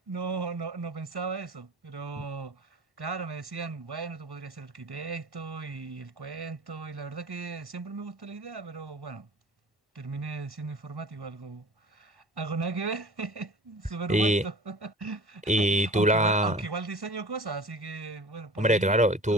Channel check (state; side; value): normal; both; correlation 0.42